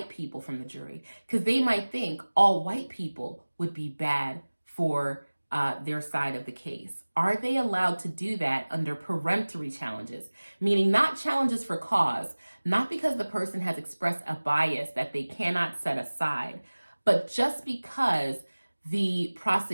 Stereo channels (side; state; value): both; inverted; correlation -1.00